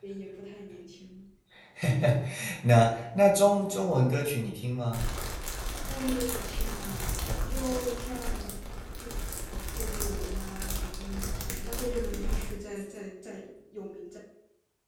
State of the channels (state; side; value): identical; both; correlation 1.00